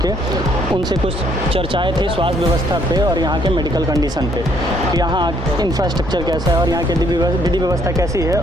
उनसे कुछ चर्चाएं थी स्वास्थ्य व्यवस्था पे और यहाँ के मेडिकल कंडीशन पे कि यहाँ इंफ्रास्ट्रक्चर कैसा है और यहाँ की विधि व्यवस्था कैसी है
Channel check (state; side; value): normal; both; correlation 0.67